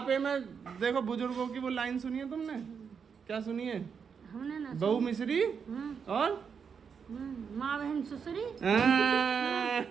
में देखो बुजुर्गों की वो लाइन सुनी है तुमने? क्या सुनी है? हमने ना बहू मिश्री और माँ बहन ससुरी।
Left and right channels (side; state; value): left; quieter; 6.5 dB